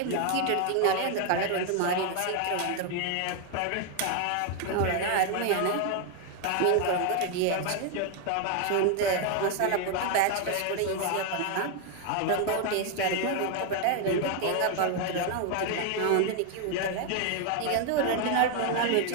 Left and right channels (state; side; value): different; both; correlation 0.01